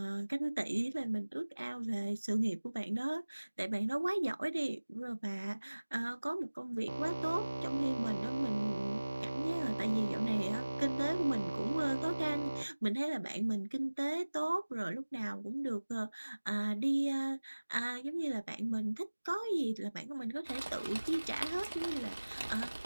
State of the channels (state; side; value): inverted; both; correlation -1.00